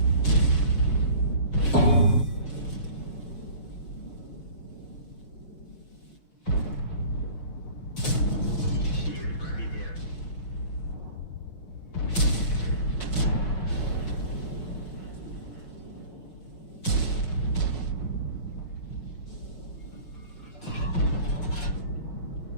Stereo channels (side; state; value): right; late; 6.1 ms